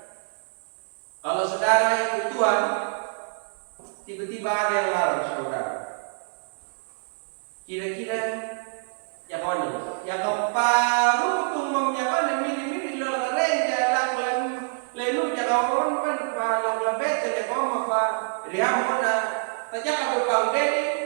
kalau saudara ikut Tuhan, tiba-tiba ada yang larang saudara, kira-kira ya kawan, ya kaparu tung memnyakawan mili-mili lalang renja lalu ya kawan kan palang labet ya kawan apa rihamona tajak apa pang deni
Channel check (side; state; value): left; silent; 61 dB below the other